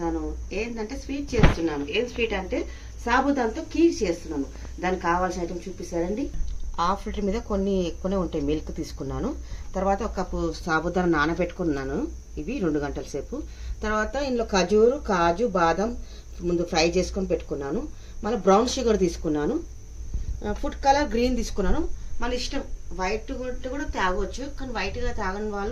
ఏంటంటే స్వీట్ చేస్తున్నాను. ఏం స్వీట్ అంటే సాబుదాంతో కీర్ చేస్తున్నాను. దానికి కావాల్సిన ఐటమ్ చూపిస్తారండి. హాఫ్ లీటర్ మీద కొన్ని ఎక్కువనే ఉంటాయి. మిల్క్ తీసుకున్నాను. తర్వాత ఒక కప్పు సాబుదాన నానబెట్టుకున్నాను. ఇవి 2 గంటల సేపు. తర్వాత ఇందులో కాజు బాదం ముందు ఫ్రై చేసుకొని పెట్టుకున్నాను. మళ్ళీ బ్రౌన్ షుగర్ తీసుకున్నాను. ఫుడ్ కలర్ గ్రీన్ తీసుకున్నాను. మన ఇష్టం, వైట్ కూడా తాగవచ్చు, కానీ వైట్గా తాగని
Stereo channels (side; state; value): both; identical; correlation 1.00